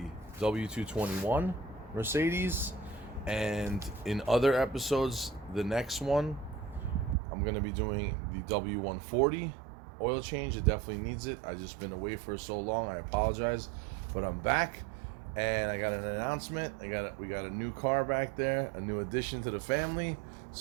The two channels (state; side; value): drops out; left; at 7.2 s